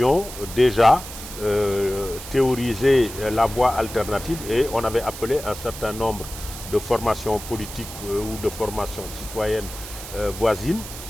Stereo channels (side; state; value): right; noise; hiss, 12 dB below the sound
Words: déjà théorisé la voie alternative et on avait appelé un certain nombre de formations politiques ou de formations citoyennes voisines